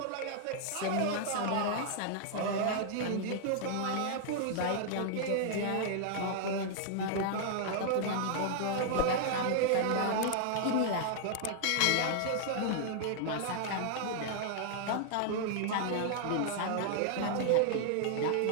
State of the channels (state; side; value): different; both; correlation 0.00